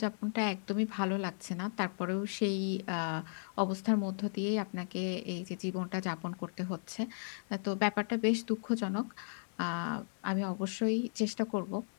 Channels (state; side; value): silent; right; digital silence